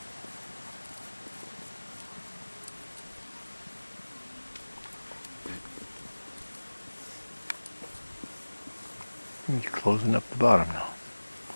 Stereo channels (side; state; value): both; inverted; correlation -1.00